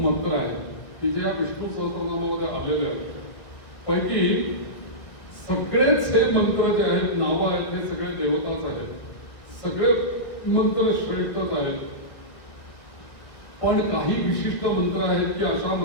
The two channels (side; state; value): right; late; 1.7 ms